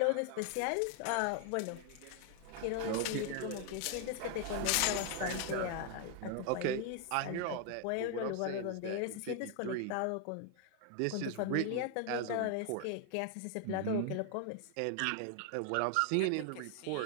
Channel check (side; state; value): both; different; correlation 0.00